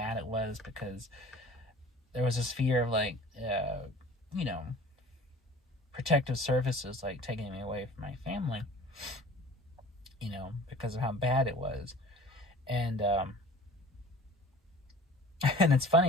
it was, because there was this fear of, like, protective services, like, taking me away from my family, because of how bad it was. And, and it's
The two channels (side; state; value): both; normal; correlation 0.44